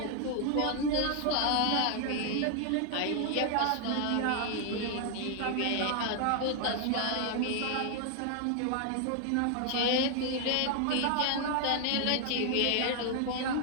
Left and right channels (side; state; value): both; different; correlation 0.00